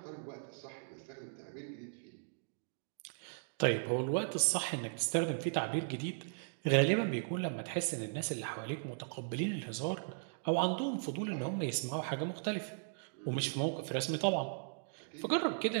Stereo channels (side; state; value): left; silent; digital silence